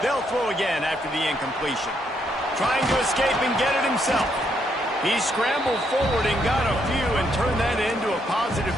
They'll throw again after the incompletion. Trying to escape and get it himself. He scrambled forward and got a few and turned that into a positive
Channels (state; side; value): normal; both; correlation 0.75